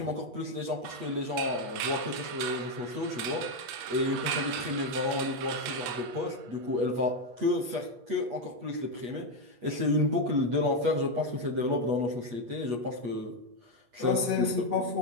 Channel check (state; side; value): late; left; 8.3 ms